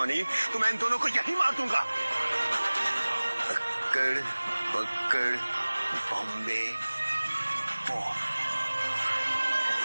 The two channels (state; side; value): inverted; both; correlation -1.00